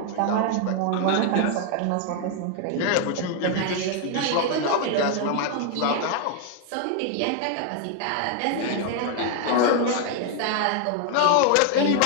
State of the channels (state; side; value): different; both; correlation 0.00